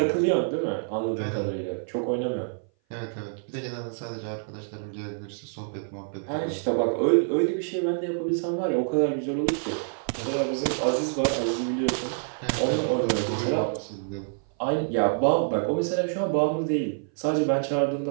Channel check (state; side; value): silent; left; 57 dB below the other